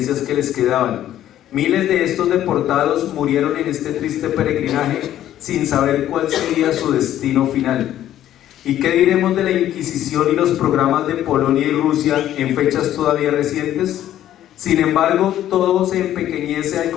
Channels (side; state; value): right; quieter; 12.1 dB